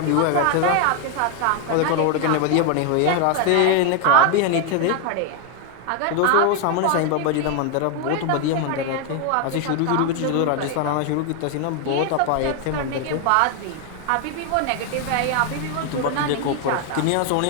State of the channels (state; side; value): different; both; correlation 0.01